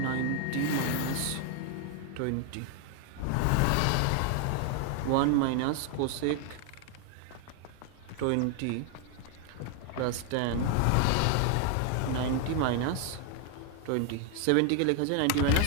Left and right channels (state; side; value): different; both; correlation 0.00